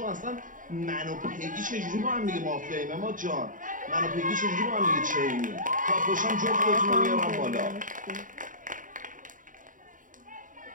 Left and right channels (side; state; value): left; late; 0.38 ms